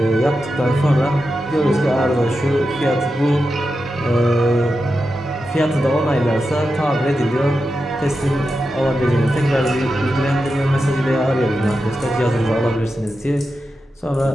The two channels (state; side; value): normal; both; correlation 0.90